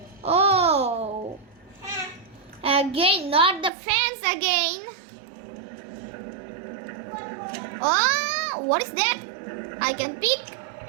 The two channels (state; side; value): drops out; left; at 3.7 s